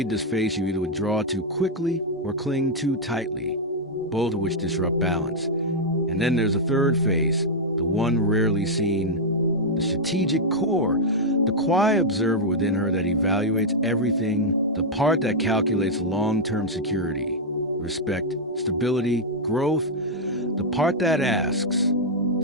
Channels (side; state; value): both; normal; correlation -0.03